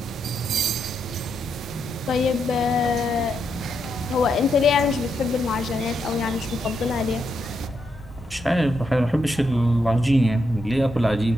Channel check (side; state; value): both; normal; correlation 0.81